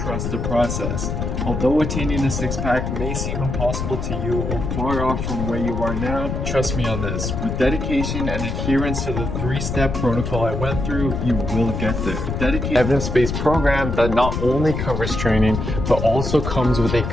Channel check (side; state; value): left; noise; rumble, 3 dB below the sound